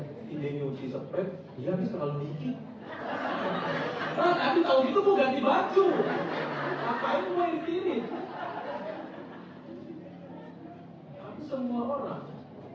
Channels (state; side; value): identical; both; correlation 1.00